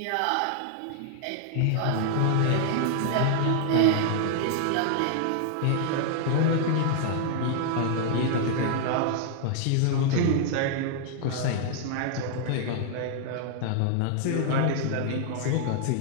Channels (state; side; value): different; both; correlation 0.00